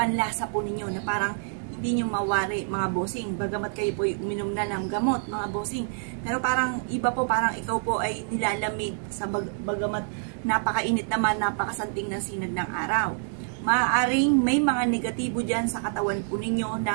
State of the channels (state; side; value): silent; left; 60 dB below the other